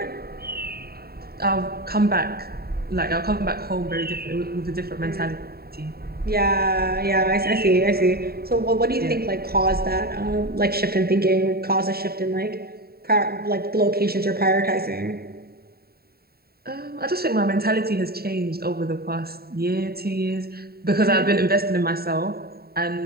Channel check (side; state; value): left; late; 0.45 ms